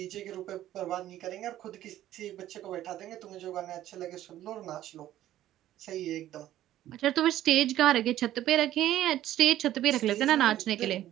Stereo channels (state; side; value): quieter; left; 13.2 dB